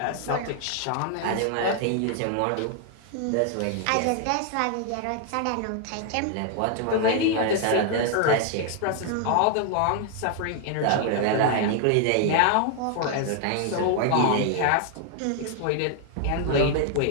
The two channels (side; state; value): both; different; correlation 0.00